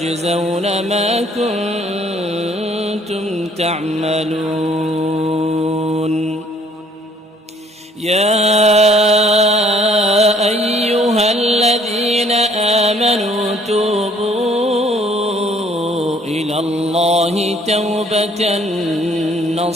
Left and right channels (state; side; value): normal; both; correlation 0.60